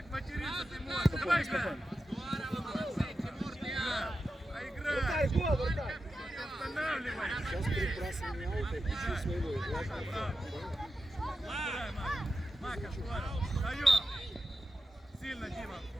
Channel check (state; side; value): normal; both; correlation 0.90